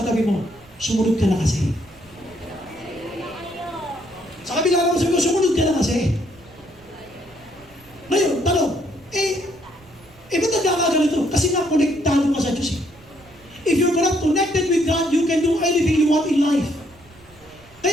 mo, sumunod ka na kasi. Sa kabila naman sabi mo, sumunod ka na kasi. Ngayon, tanong, ba't nagkakaganito? Kasi nga, konektado ka sa Diyos eh. If you're not connected with God, you can do anything you want in life.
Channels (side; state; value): right; noise; rumble, 26 dB below the sound